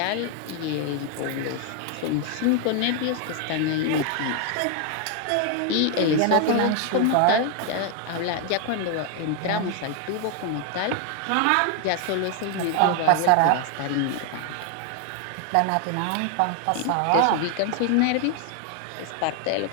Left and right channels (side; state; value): both; different; correlation 0.00